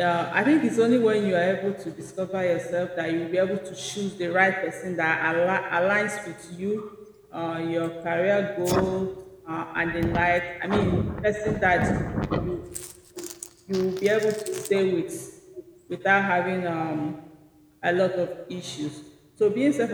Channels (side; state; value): both; identical; correlation 1.00